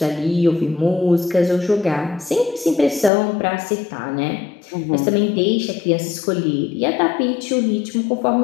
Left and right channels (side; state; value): right; drops out; at 3.1 s